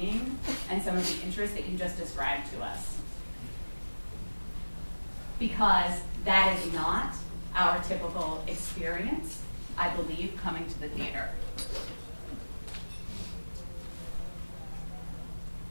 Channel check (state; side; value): inverted; both; correlation -1.00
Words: and some of the interest that you just described to us. Because that is not our typical experience, I believe, coming to the theater.